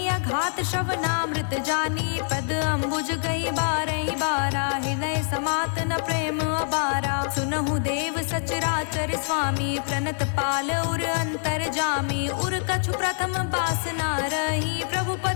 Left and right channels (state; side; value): silent; right; 62 dB below the other